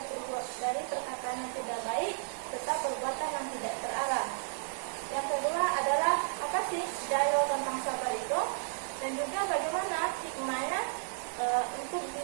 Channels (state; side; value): silent; left; digital silence